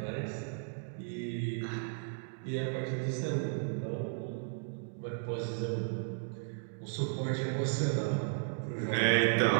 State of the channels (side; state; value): left; silent; digital silence